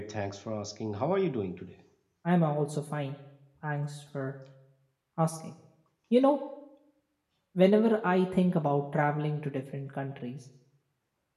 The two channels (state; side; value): identical; both; correlation 1.00